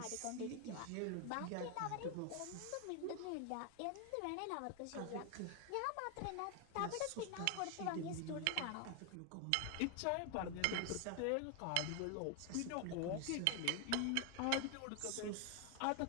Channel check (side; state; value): both; different; correlation 0.01